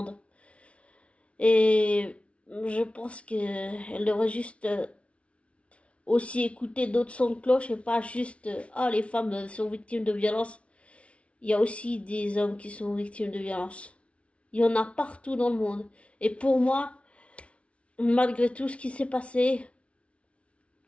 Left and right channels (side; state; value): right; late; 0.062 ms